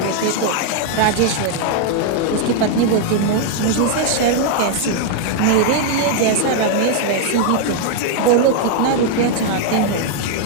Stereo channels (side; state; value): both; different; correlation 0.00